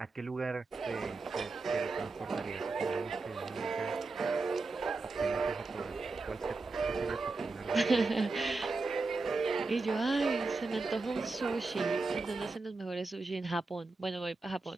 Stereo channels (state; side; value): quieter; left; 3.7 dB